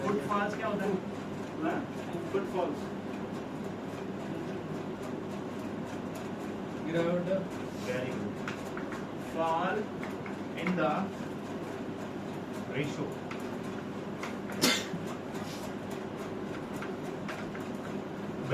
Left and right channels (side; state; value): both; identical; correlation 1.00